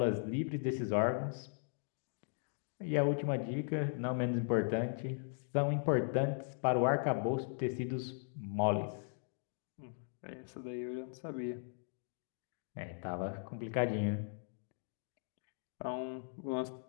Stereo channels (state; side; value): silent; right; digital silence